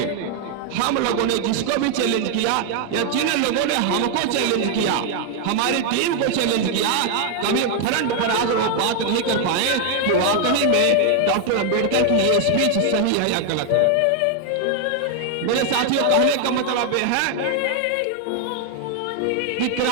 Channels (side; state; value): both; different; correlation 0.00